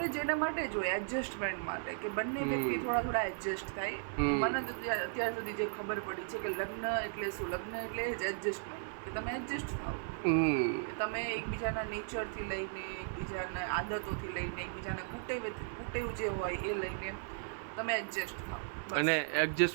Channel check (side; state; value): left; silent; 54 dB below the other